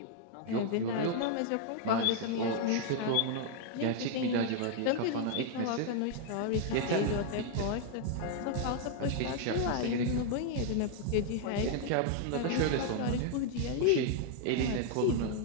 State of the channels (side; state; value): both; different; correlation 0.00